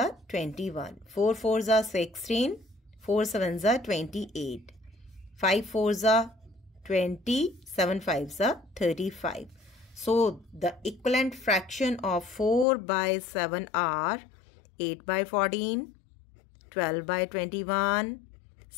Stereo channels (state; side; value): drops out; right; at 12.7 s